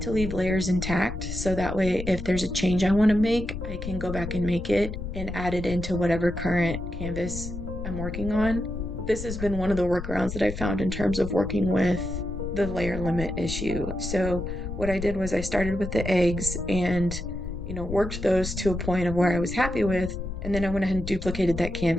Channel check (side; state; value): left; noise; rumble, 7 dB below the sound